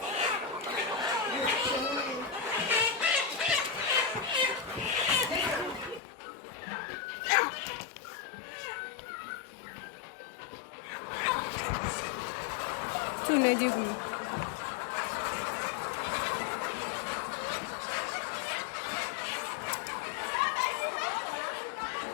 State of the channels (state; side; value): drops out; right; at 6.0 s